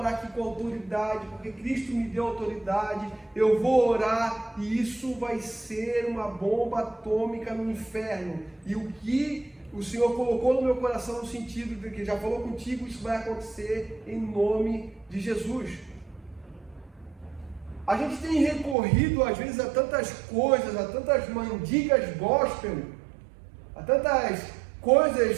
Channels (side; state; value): left; drops out; at 18.8 s